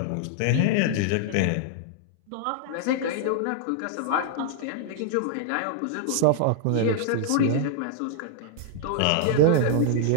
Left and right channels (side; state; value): both; different; correlation -0.01